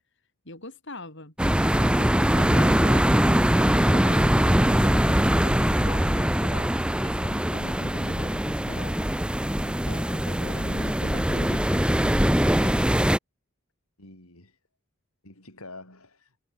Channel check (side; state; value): both; normal; correlation 0.94